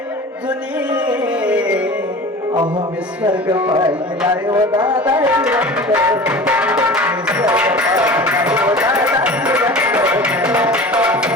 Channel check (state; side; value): normal; both; correlation 0.37